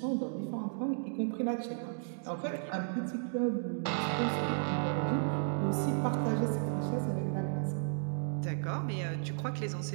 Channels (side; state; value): left; silent; digital silence